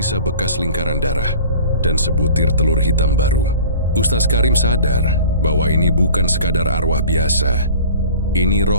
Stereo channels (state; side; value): inverted; both; correlation -0.43